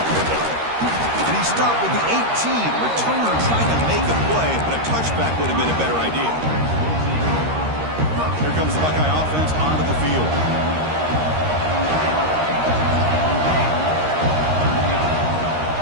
And he stopped with the 18. Returner trying to make a play, but a touchback would have been a better idea. Here comes the Buckeye offense onto the field.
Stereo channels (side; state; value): left; late; 13 ms